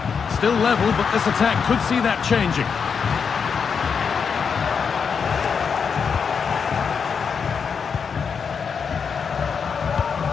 Still level, but this attack could see that changing.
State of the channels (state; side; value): quieter; right; 6.2 dB